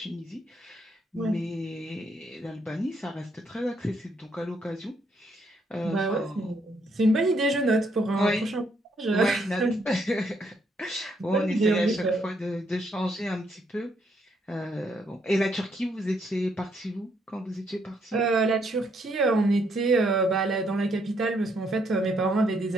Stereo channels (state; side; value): normal; both; correlation 0.73